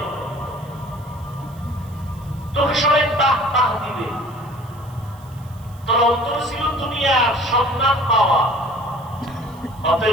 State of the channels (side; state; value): right; noise; hiss, 26 dB below the sound